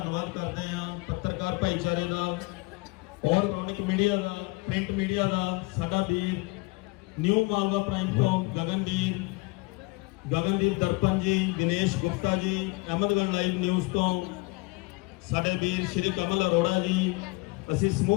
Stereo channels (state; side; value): quieter; right; 25.6 dB